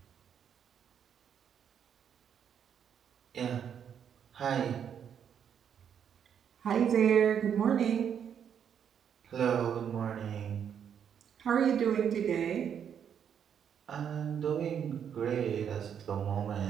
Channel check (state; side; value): quieter; left; 8.3 dB